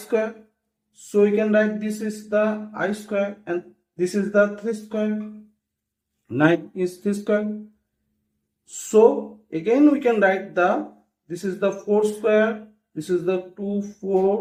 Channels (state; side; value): identical; both; correlation 1.00